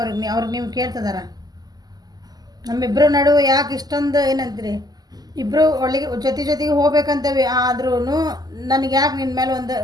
ಅವ್ರಿಗೆ ನೀವು ಕೇಳ್ತಿದಾರ. ನಮ್ಮಿಬ್ಬರು ನಡುವೆ ಯಾಕೆ ಇಷ್ಟೊಂದು ಏನಂತೀರಿ, ಇಬ್ಬರು ಒಳ್ಳೆಗೆ ಜೊತೆಗೆ ಹೋಗ್ಬೇಕಂತೇವೆ, ಆದ್ರೂ ನನಗೆ ಯಾಕೆ ನಿನ್ನ ಮೇಲೆ ಒಂದು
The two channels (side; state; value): left; late; 0.19 ms